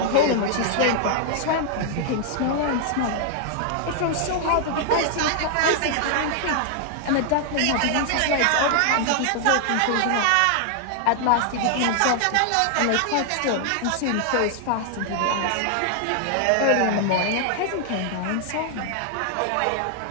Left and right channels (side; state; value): both; different; correlation 0.00